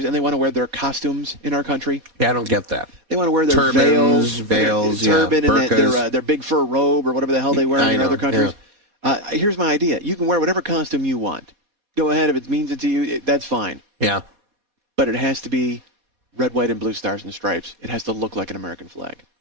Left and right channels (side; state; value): left; late; 4.2 ms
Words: and they want to wear their costumes in our country? Yeah, I don't get that. They want to wear their turbans, veils, turban, and their big fur robe or whatever the hell they wear in other countries. Yeah. Here's my idea. You can wear whatever costume you want. Go ahead. If it means it to you, that's fine. Yeah. But it has to be red, white, and blue stars and stripes. It has to look like an American flag.